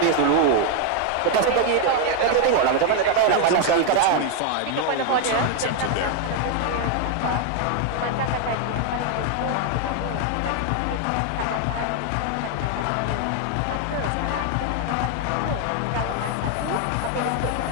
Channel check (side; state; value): both; different; correlation 0.01